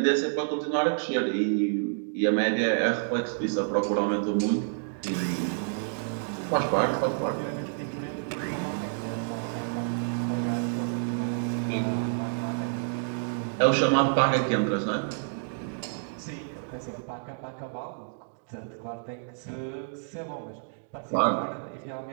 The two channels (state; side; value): silent; left; digital silence